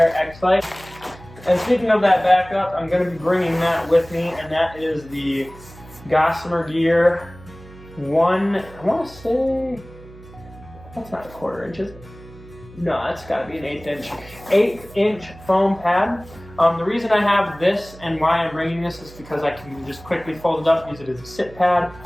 X-Lite. And speaking of that backup, I'm going to be bringing that with me, and that is the Gossamer Gear I want to say, that's not a 1/4 inch, is it? No, that's got to be an 1/8 inch foam pad. The reason I have this and why I'm bringing this is because I can just quickly fold it up, use it as a sit pad.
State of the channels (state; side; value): noise; right; hum, 20 dB below the sound